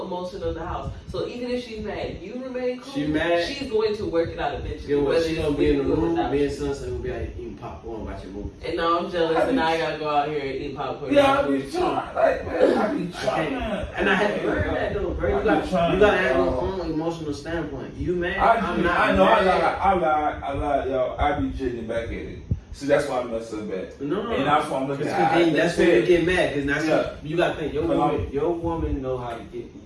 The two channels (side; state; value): both; identical; correlation 1.00